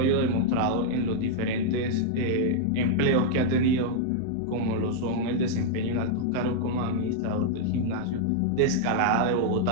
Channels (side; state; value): both; different; correlation -0.01